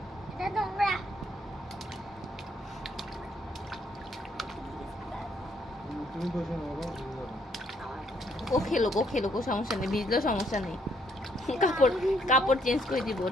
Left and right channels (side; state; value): both; normal; correlation 0.70